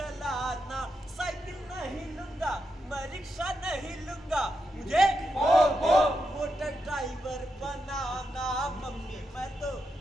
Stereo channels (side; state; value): both; normal; correlation 0.85